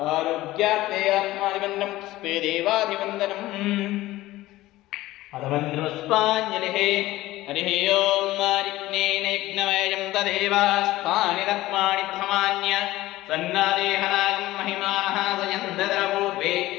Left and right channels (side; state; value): right; quieter; 16.9 dB